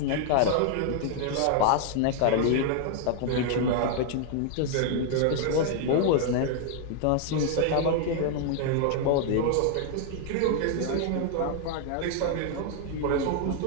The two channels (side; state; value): both; different; correlation 0.00